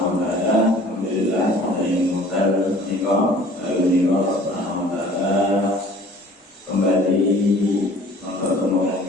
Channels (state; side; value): normal; both; correlation 0.49